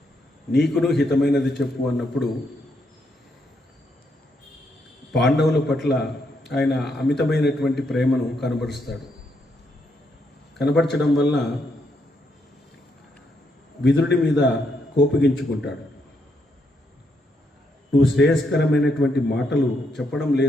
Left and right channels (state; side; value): normal; both; correlation 0.77